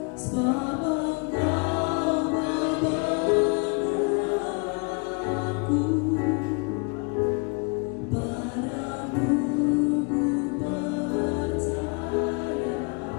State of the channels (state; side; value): quieter; right; 33.9 dB